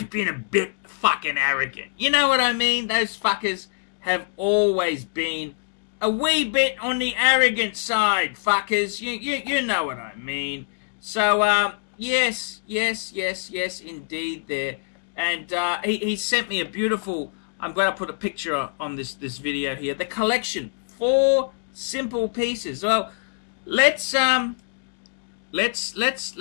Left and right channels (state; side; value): silent; right; digital silence